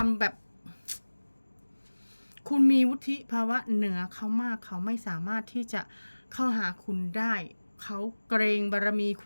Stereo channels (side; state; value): both; inverted; correlation -1.00